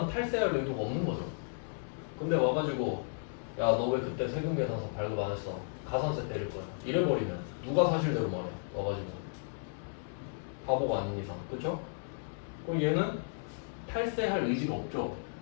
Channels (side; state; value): right; silent; 55 dB below the other